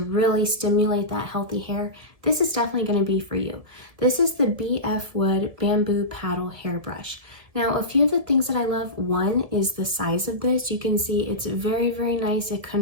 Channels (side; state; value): left; late; 1.7 ms